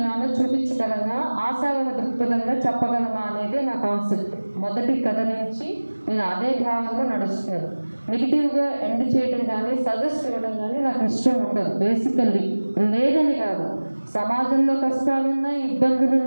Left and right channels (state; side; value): inverted; both; correlation -1.00